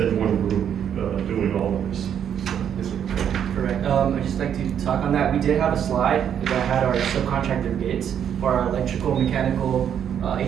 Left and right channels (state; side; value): quieter; left; 8.9 dB